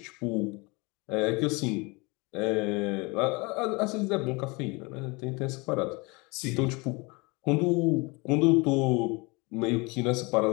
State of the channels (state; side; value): quieter; right; 27.0 dB